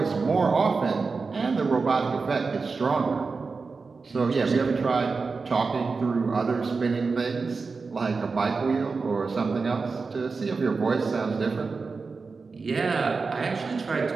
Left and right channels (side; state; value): left; quieter; 4.5 dB